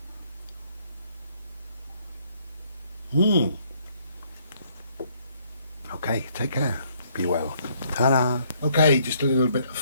Okay, take care. Be well. Ta-da. Okay, just a little bit of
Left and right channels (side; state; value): both; inverted; correlation -0.67